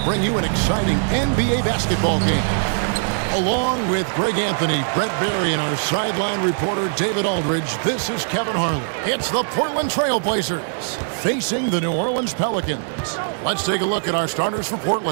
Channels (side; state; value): left; silent; 65 dB below the other